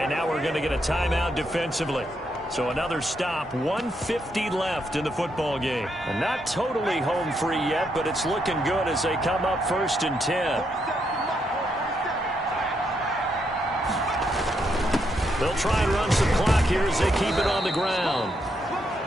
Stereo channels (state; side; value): normal; both; correlation 0.78